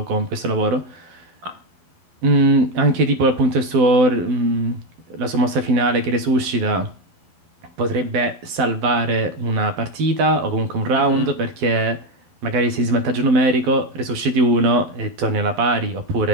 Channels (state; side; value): late; left; 12 ms